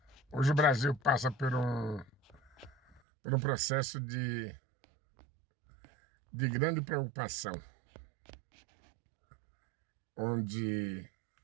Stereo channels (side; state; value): left; drops out; at 3.0 s